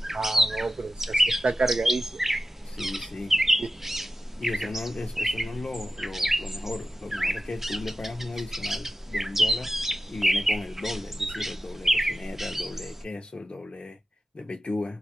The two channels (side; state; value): both; normal; correlation 0.92